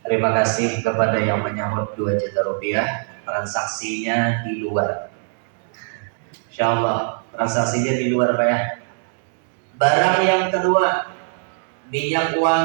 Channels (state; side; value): silent; left; digital silence